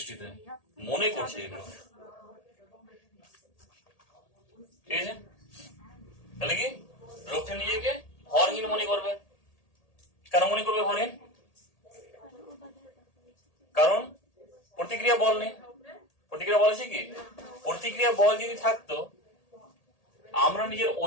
মনে করছে এগুলো। ঠিক আছে। তাহলে কি লোকটা নিজেকে ভরহীন মনে করবে। কেন মনে করবে ভরহীন? কারণ প্রতিক্রিয়া বল নেই। প্রতিক্রিয়া বল আছে কি? প্রতিক্রিয়া বল যদি থাকতো আমরা নিজের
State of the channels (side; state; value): right; late; 1.8 ms